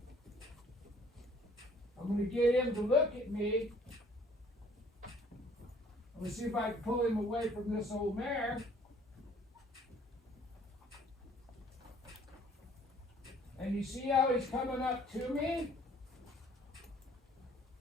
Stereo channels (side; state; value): both; normal; correlation 0.57